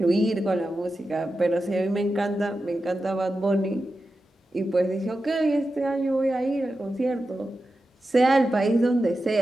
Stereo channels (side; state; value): both; normal; correlation 0.91